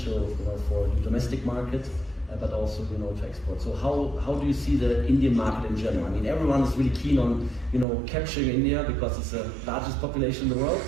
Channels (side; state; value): left; drops out; at 7.9 s